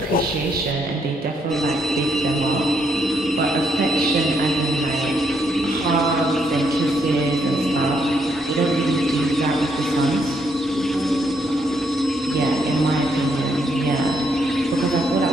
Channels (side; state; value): both; normal; correlation 0.74